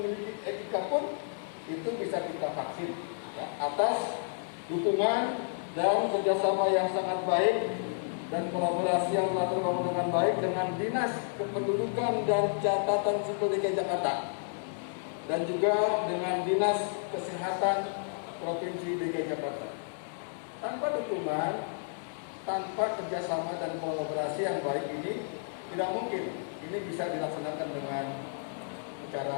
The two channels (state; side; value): silent; right; digital silence